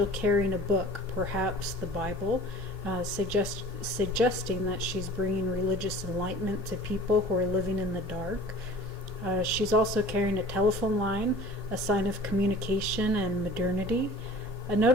carrying a book, perhaps the Bible, suggesting that she's bringing religious enlightenment to people who are living in the dark. She's also carrying a telephone line, a sign of communication and modernity.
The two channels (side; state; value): both; normal; correlation 0.45